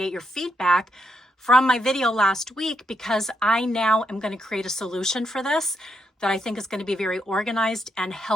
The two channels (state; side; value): normal; both; correlation 0.81